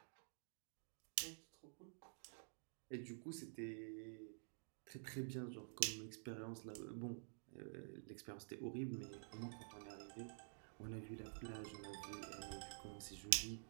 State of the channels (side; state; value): left; silent; digital silence